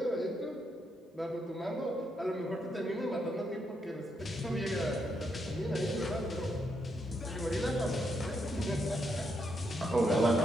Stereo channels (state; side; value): normal; both; correlation 0.79